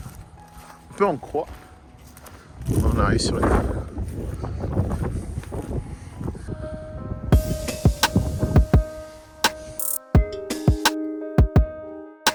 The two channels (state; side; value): identical; both; correlation 1.00